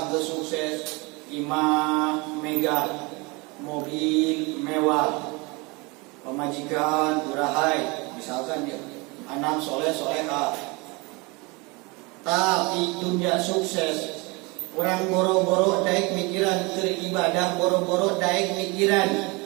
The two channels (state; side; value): quieter; left; 26.9 dB